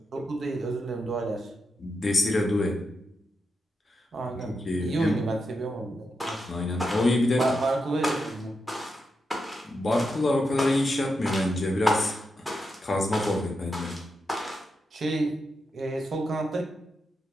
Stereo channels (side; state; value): both; normal; correlation 0.86